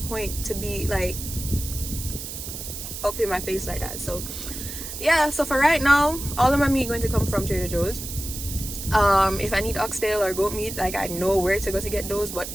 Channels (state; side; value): noise; right; hiss, 8 dB below the sound